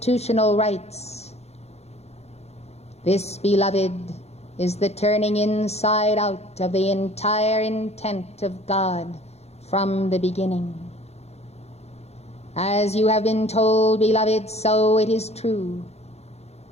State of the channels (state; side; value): late; right; 0.31 ms